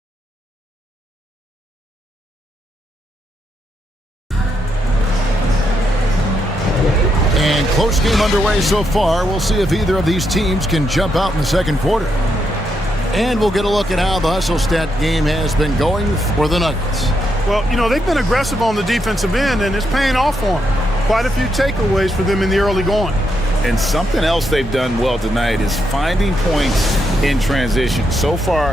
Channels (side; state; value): both; normal; correlation 0.80